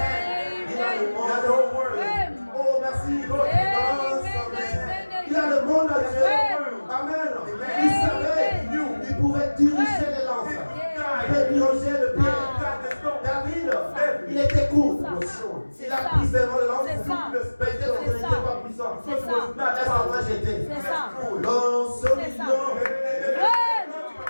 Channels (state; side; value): inverted; both; correlation -1.00